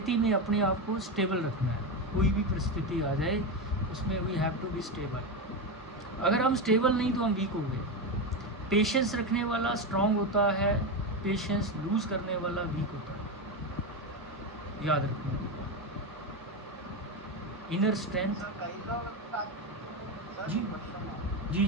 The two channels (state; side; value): normal; both; correlation 0.14